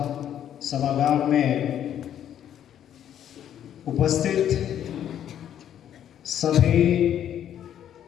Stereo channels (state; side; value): quieter; right; 10.2 dB